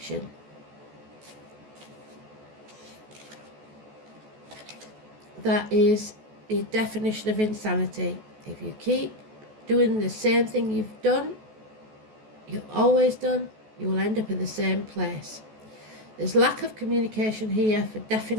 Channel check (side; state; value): left; late; 14 ms